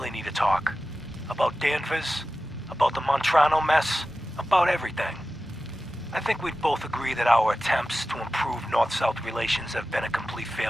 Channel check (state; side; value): normal; both; correlation 0.94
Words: need to talk. About Danvers, about the Montrano mess, about everything. I think we'd both agree that our attempts to improve North-South relations have been a complete